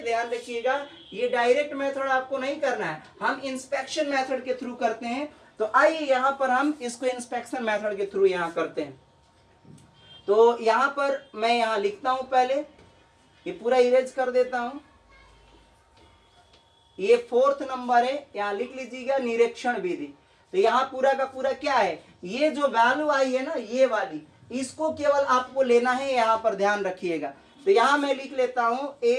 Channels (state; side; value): identical; both; correlation 1.00